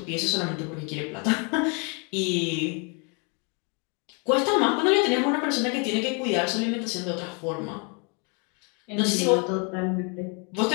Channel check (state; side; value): quieter; right; 34.9 dB